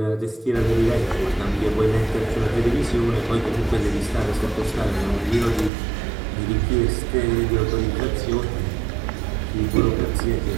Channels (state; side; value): drops out; left; at 5.7 s